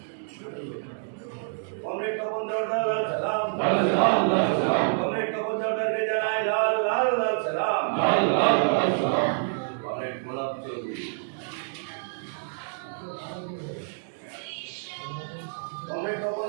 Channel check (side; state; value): left; silent; digital silence